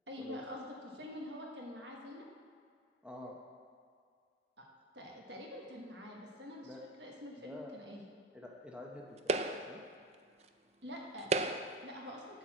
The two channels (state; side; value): normal; both; correlation 0.25